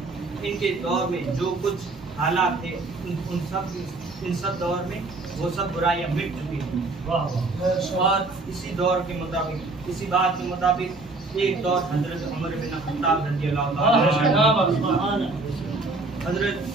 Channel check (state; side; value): quieter; left; 3.3 dB